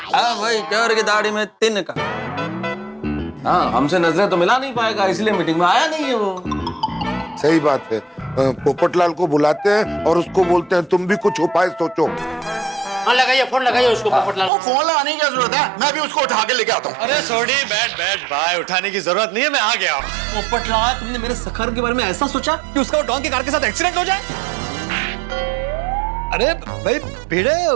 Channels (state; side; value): drops out; left; at 14.5 s